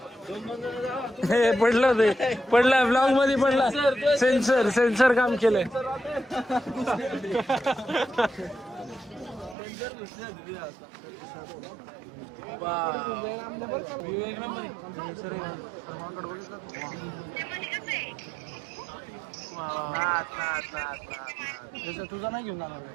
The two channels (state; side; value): drops out; left; at 9.6 s